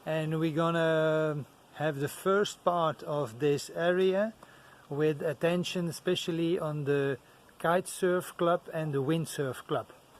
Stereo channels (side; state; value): both; identical; correlation 1.00